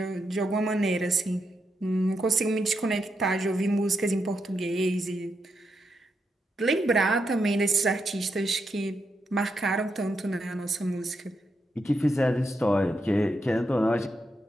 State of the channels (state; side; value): normal; both; correlation 0.83